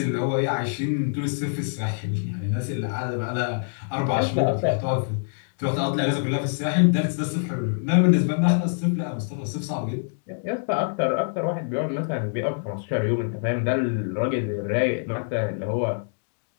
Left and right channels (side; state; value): right; silent; digital silence